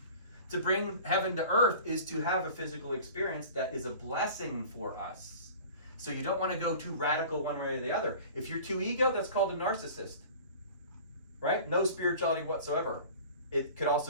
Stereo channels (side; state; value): both; inverted; correlation -0.42